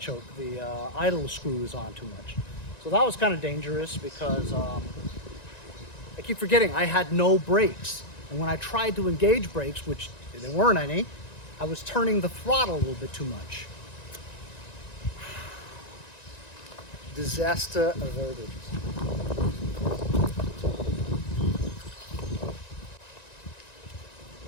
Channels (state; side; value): late; right; 1.9 ms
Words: the idle screw is on too much. So that was kind of dangerous because I keep forgetting I had no brakes. And when I tried to engage brakes, which there weren't any, I was turning the throttle a little bit too much. Disaster averted.